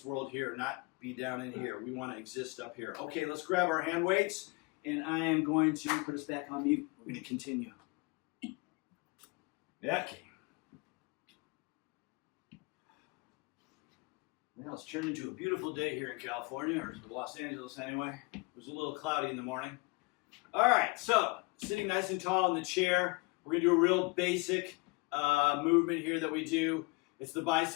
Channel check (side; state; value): right; quieter; 27.0 dB